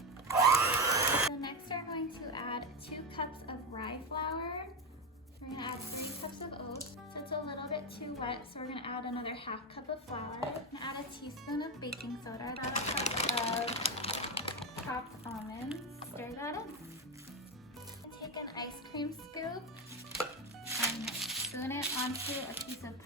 So next we're going to add 2 cups of rye flour. We're going to add 3 cups of oats. So it's a little bit too wet, so we're going to add another half cup of flour. We're going to add a teaspoon of baking soda, about a cup of chopped almonds. Stir that in. Take an ice cream scoop and spoon it onto a piece of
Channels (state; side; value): normal; both; correlation 0.14